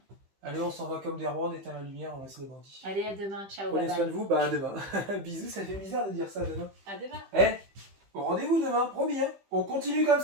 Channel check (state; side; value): late; left; 15 ms